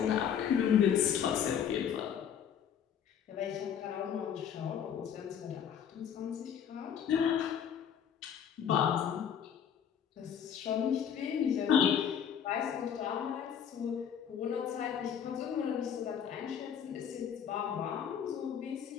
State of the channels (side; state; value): right; quieter; 8.4 dB